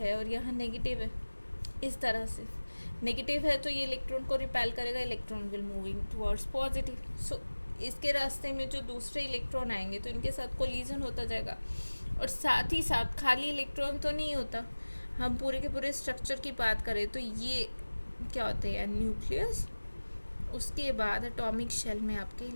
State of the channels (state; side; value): inverted; both; correlation -1.00